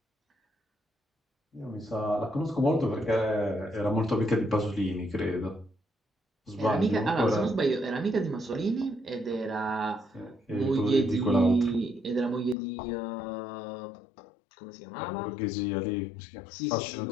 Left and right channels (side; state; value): right; drops out; at 12.6 s